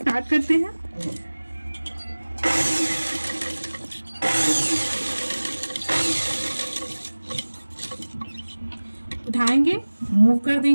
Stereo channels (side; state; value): both; inverted; correlation -1.00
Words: करते हैं। उठाएंगे, मूव कर